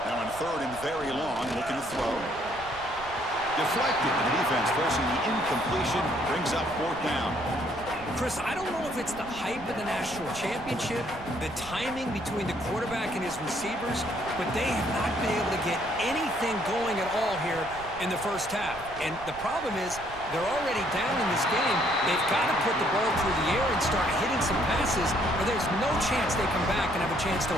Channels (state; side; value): noise; right; rumble, 17 dB below the sound